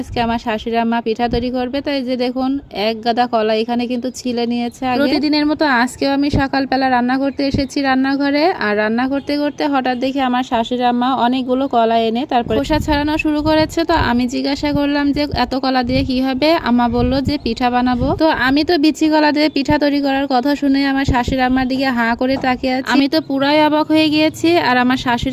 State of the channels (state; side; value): identical; both; correlation 1.00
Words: আমার শাশুড়ি আম্মা পিঠা তৈরি করবে। তো এই যে দেখুন, এক গাদা কলা এখানে কিন্তু ছিলে নিয়েছে। প্রতিদিনের মতো আজকেও আমি সকালবেলা রান্না করতে এসেছি রান্নাঘরে, আর রান্না করতে করতে হঠাৎ দেখি আমার শাশুড়ি আম্মা অনেকগুলো কলা এনে তারপর খোসা ছাড়ানো শুরু করেছে। তো আমি জিজ্ঞাসা করলাম যে এত কলা দিয়ে কি হবে। আম্মা বলল যে পিঠা বানাবো। তো আমি তো বিচি কলা দিয়ে পিঠা তৈরি করার কথা শুনে আমার শাশুড়ি আম্মার দিকে হাঁ করে তাকিয়ে আছি। আমি তো পুরাই অবাক হয়ে গিয়েছি, আর আমার